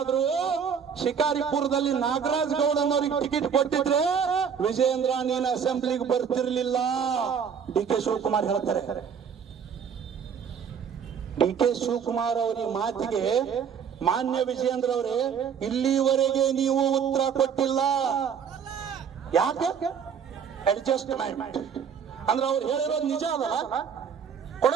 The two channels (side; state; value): left; quieter; 7.2 dB